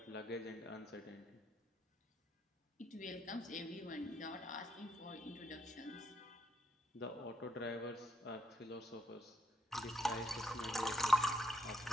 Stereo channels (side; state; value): both; normal; correlation 0.76